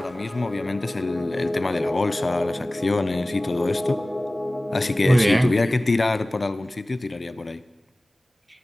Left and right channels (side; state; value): both; normal; correlation 0.98